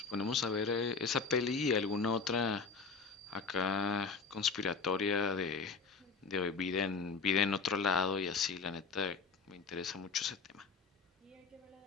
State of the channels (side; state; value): right; quieter; 4.9 dB